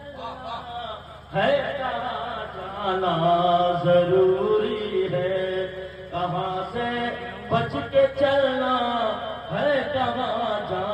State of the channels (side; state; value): both; identical; correlation 1.00